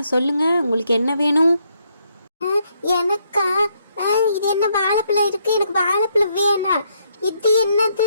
சொல்லுங்க, உங்களுக்கு என்ன வேணும்? எனக்கா? இது என்ன வாழைப்பழம் இருக்கு? எனக்கு வாழைப்பழம் வேணாம். இது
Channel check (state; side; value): inverted; both; correlation -0.74